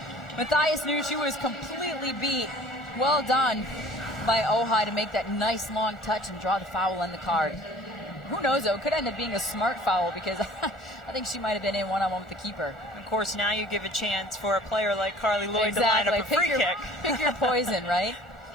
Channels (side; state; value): both; normal; correlation 0.48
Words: Matthias knew she was completely beat. Well done by Ojai to make that nice long touch and draw the foul on the card. Who knows, though, it could end up being a smart foul because I think she might have been in one-on-one with the keeper. Of course, now you give a chance for a player like Carly Lloyd to line up a free kick. Pick your poison, right?